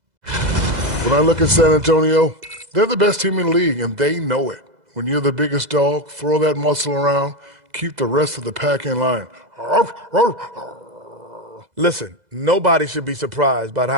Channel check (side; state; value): left; late; 2.0 ms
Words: When I look at San Antonio, they're the best team in the league, and they know it. When you're the biggest dog, throw that muscle around, keep the rest of the pack in line. Listen, nobody should be surprised by